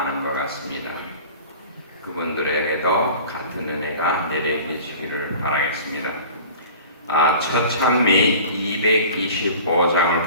것 같습니다. 그분들에게도 같은 은혜가 내려지시기를 바라겠습니다. 첫 찬미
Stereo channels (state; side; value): inverted; both; correlation -0.41